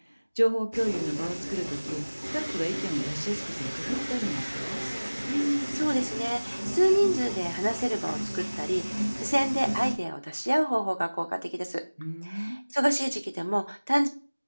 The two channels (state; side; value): inverted; both; correlation -1.00